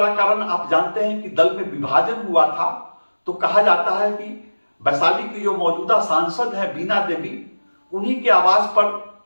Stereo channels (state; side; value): inverted; both; correlation -1.00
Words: कारण आप जानते हैं कि दल में विभाजन हुआ था, तो कहा जाता है कि वैशाली की जो मौजूदा सांसद है बीना देवी, उन्हीं के आवाज पर